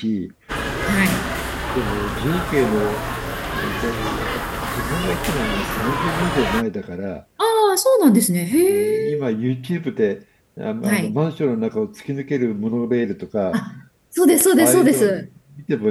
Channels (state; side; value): identical; both; correlation 1.00